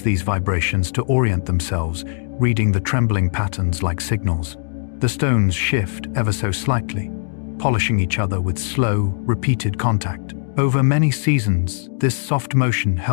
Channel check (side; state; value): right; silent; digital silence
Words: vibrations to orient themselves, reading the trembling patterns like signals. The stones shift ever so slightly, polishing each other with slow, repeated contact. Over many seasons, this soft motion